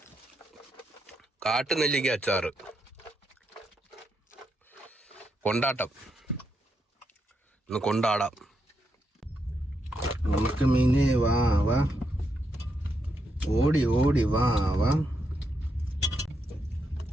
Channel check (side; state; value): both; normal; correlation 0.81